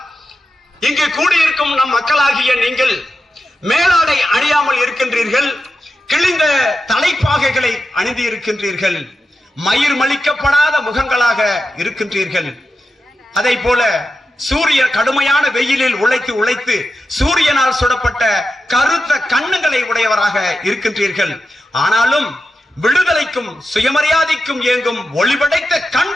இங்கு கூடியிருக்கும் நம் மக்களாகிய நீங்கள் மேலாடை அணியாமல் இருக்கின்றீர்கள், கிழிந்த தலைப்பாகைகளை அணிந்து இருக்கின்றீர்கள், மயிர் மலிக்கப்படாத முகங்களாக இருக்கின்றீர்கள். அதை போல சூரிய கடுமையான வெயிலில் உழைத்து சூரியனால் சுடப்பட்ட கருத்த கண்ணுகளை உடையவராக இருக்கின்றீர்கள். ஆனாலும் விடுதலைக்கும் சுயமரியாதைக்கும் இயங்கும் ஒளிபடைத்த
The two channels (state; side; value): normal; both; correlation 0.89